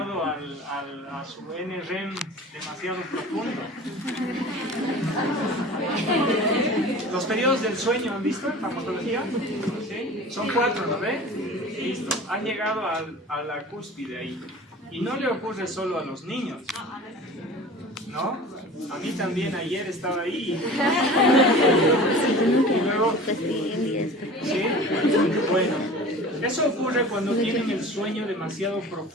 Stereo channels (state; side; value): normal; both; correlation 0.39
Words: a su NREM demasiado profundo. Los periodos del sueño, ¿han visto en farmacología? ¿Sí? Son 4, ¿no ve? Listo, han llegado a la cúspide ahí. Y no le ocurre solo a los niños, ¿no? A mí también ayer estaba ahí. Y luego, ¿sí? Bueno, eso ocurre cuando tienen el sueño demasiado